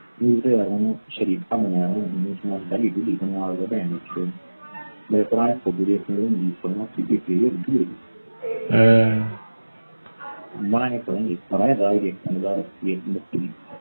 मुझे यार वो शरीफ का बनाया हूँ, मुझे मार डाली डूली बनवा लगा बहन से। मेरे पुराने फोटो देखने को नहीं पड़ा, सीधे क्लियर दूर बनाने पड़ेंगे, बनाए दाल देखने दाल ये बच्ची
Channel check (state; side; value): inverted; both; correlation -1.00